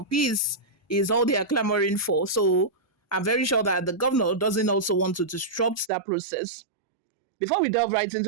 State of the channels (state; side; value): drops out; left; at 5.9 s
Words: Peace is all they are clamoring for. So I'm very sure that the governor doesn't also want to disrupt that process. Before we delve right